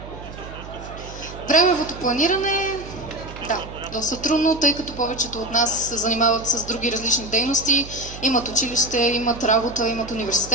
Времевото планиране, да, доста трудно, тъй като повечето от нас се занимават с други различни дейности, имат училище, имат работа, имат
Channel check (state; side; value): noise; right; hum, 14 dB below the sound